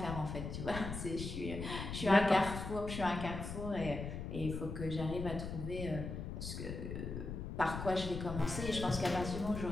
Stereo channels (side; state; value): left; noise; rumble, 6 dB below the sound